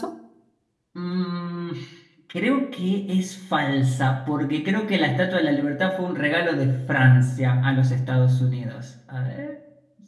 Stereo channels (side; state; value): both; identical; correlation 1.00